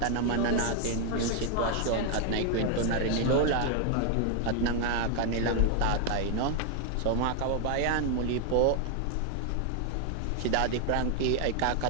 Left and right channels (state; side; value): different; both; correlation 0.00